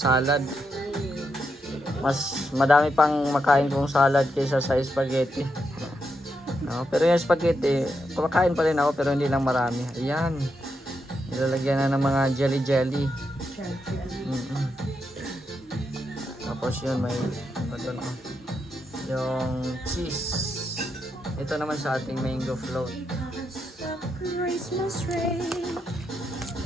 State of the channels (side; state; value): both; normal; correlation 0.83